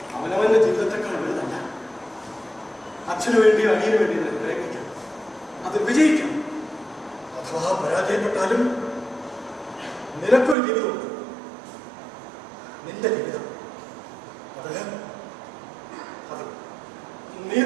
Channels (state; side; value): drops out; left; at 10.6 s